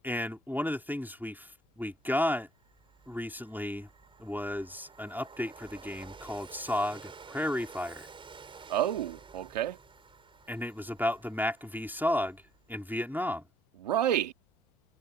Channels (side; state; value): both; normal; correlation 0.65